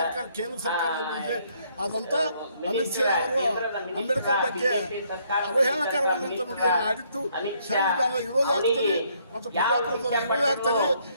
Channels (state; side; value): inverted; both; correlation -0.68